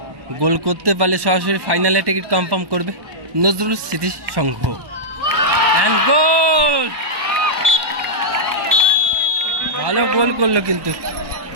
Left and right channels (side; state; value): left; late; 1.2 ms